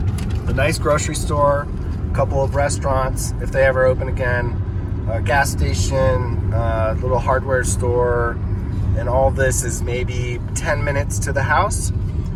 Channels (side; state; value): both; identical; correlation 1.00